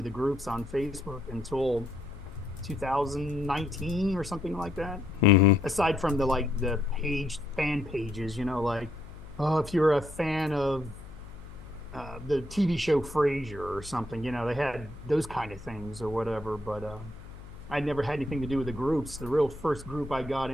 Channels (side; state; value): left; noise; hum, 16 dB below the sound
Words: the groups on Facebook until 2019 or something like that. Aside from the fan pages, if you're a fan of the TV show Frasier or something, they had those kind of things or whatever. But I never had anything to do with the groups. The real first group I got